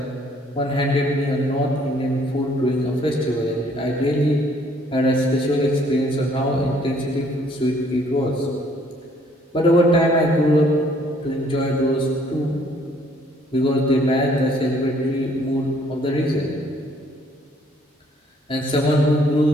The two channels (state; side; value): normal; both; correlation 0.63